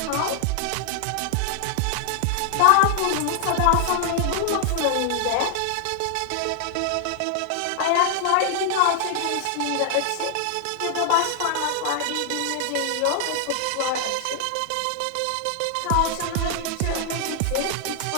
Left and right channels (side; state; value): both; different; correlation 0.00